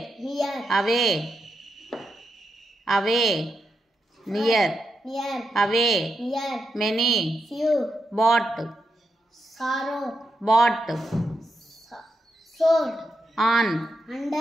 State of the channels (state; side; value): normal; both; correlation 0.85